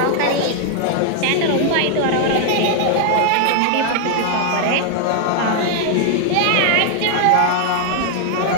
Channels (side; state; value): both; different; correlation 0.00